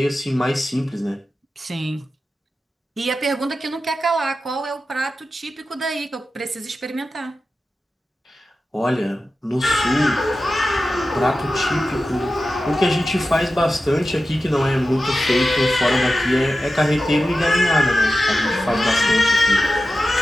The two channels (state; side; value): normal; both; correlation 0.92